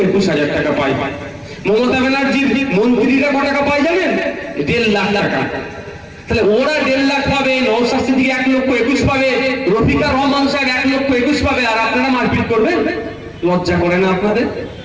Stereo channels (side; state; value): both; identical; correlation 1.00